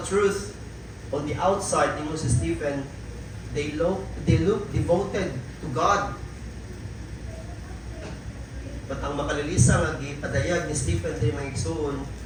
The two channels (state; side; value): identical; both; correlation 1.00